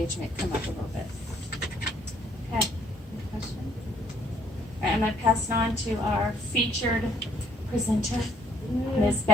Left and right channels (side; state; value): both; normal; correlation 0.65